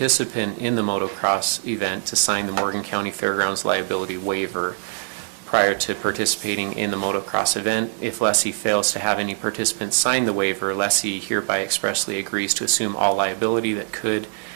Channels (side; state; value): left; silent; digital silence